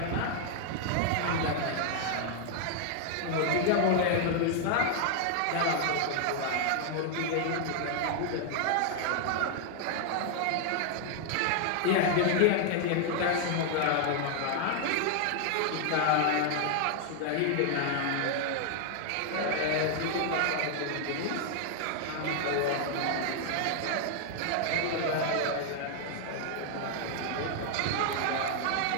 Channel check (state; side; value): different; both; correlation 0.00